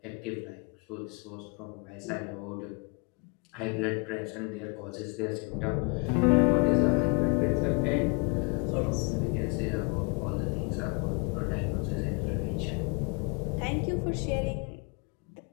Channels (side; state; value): right; quieter; 34.2 dB